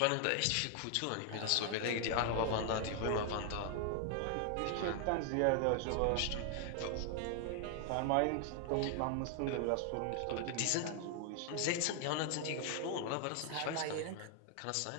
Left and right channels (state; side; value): different; both; correlation 0.00